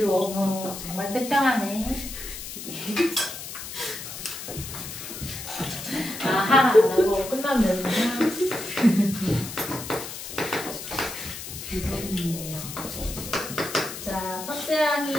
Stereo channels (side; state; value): left; noise; hiss, 9 dB below the sound